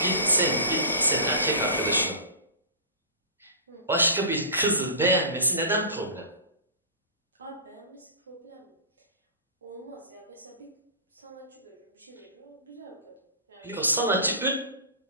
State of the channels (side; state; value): both; inverted; correlation -0.34